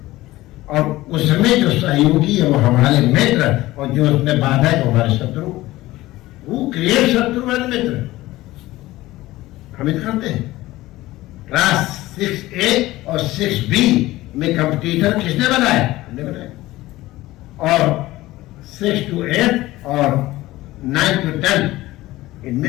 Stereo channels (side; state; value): right; quieter; 17.6 dB